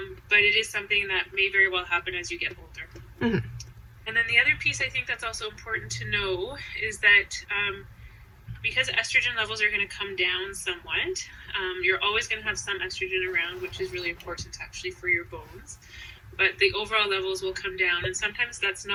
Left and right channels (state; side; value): identical; both; correlation 1.00